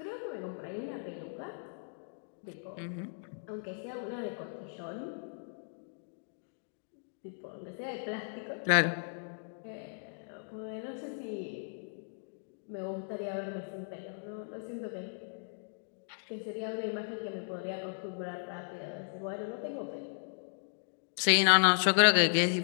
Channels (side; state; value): right; silent; digital silence